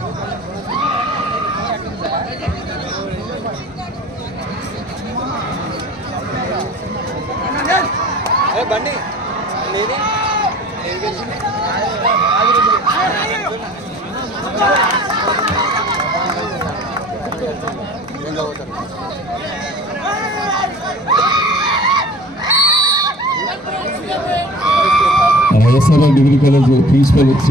బండి YSR degree college principal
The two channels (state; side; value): normal; both; correlation 0.45